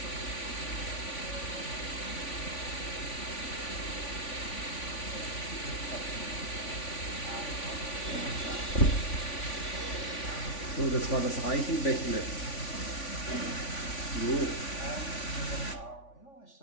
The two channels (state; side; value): late; right; 3.5 ms